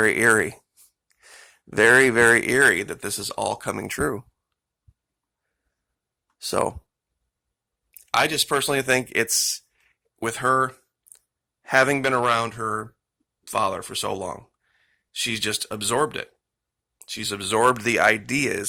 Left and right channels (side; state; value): both; identical; correlation 1.00